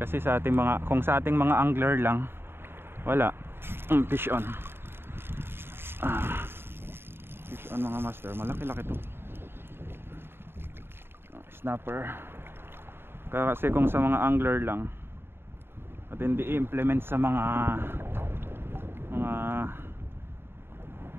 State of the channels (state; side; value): late; left; 0.11 ms